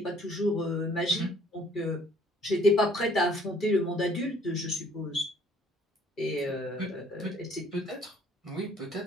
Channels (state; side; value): normal; both; correlation 0.59